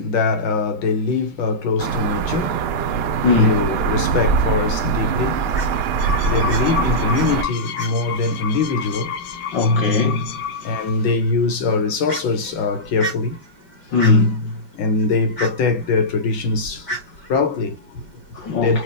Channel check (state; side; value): late; right; 5.9 ms